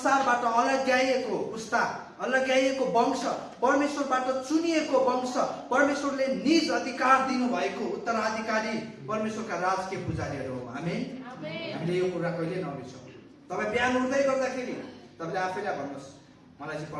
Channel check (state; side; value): identical; both; correlation 1.00